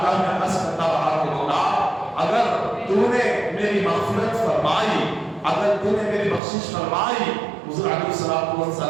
میں عرض کرتا رہا کہ مولا اگر تو نے میری مغفرت فرمائی، اگر تو نے میری بخشش فرمائی، حضور علیہ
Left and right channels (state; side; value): drops out; left; at 6.4 s